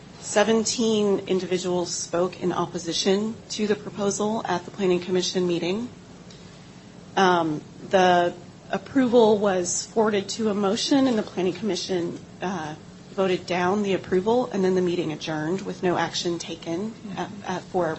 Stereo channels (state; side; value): identical; both; correlation 1.00